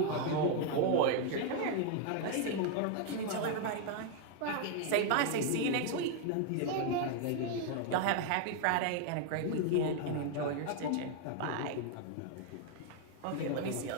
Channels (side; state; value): both; different; correlation 0.00